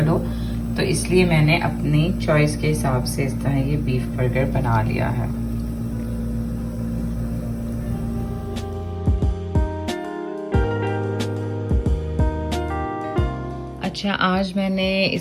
हो, तो इसलिए मैंने अपनी चॉइस के हिसाब से इस तरह ये बीफ बर्गर बना लिया है। अच्छा, आज मैंने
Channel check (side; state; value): both; identical; correlation 1.00